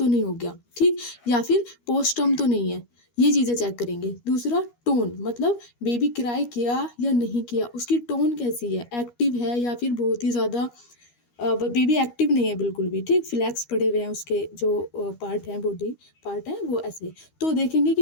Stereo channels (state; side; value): late; right; 13 ms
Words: नहीं हो गया, ठीक, या फिर पोस्ट टर्म तो नहीं है, ये चीज़ें चेक करेंगे। दूसरा टोन, मतलब बेबी क्राई किया या नहीं किया, उसकी टोन कैसी है, एक्टिव है या फिर बहुत ही ज़्यादा बेबी एक्टिव नहीं है बिल्कुल भी, ठीक, फ्लैक्स पड़े हुए हैं, उसके जो पार्ट हैं, बॉडी पार्ट हैं वो ऐसे। तो देखेंगे